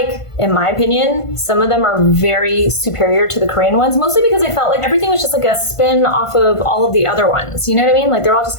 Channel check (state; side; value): late; right; 1.5 ms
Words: in my opinion, some of them are very superior to the Korean ones, mostly because I felt like everything was just like a spin off of all of the other ones. You know what I mean? Like they're all just